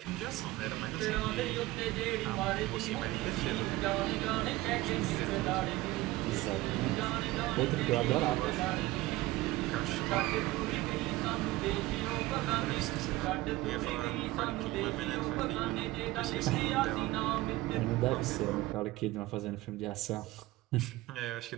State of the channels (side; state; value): left; quieter; 18.5 dB